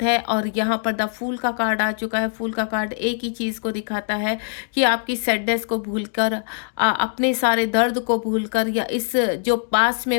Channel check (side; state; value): right; silent; digital silence